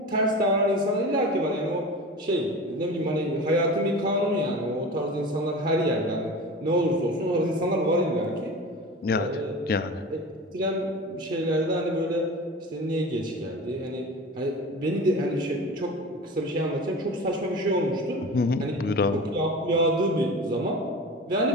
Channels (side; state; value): both; normal; correlation 0.33